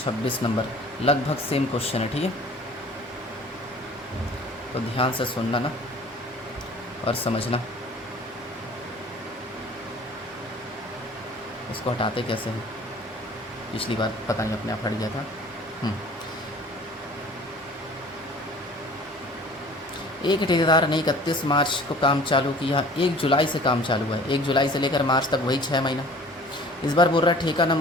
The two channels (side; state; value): both; normal; correlation 0.48